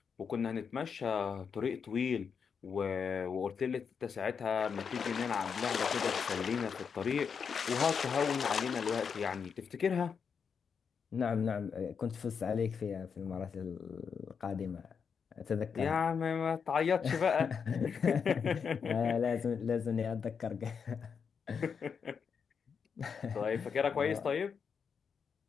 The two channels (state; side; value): quieter; right; 6.4 dB